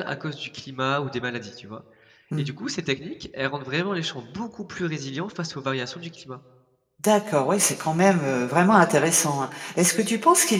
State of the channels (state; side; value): identical; both; correlation 1.00